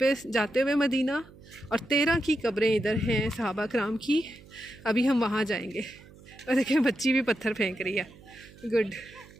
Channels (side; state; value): right; noise; hum, 22 dB below the sound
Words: जाते हुए मदीना, और 13 की कब्रें इधर हैं सहाबा कराम की। अभी हम वहाँ जाएंगे। और देखें बच्ची भी पत्थर फेंक रही है। गुड,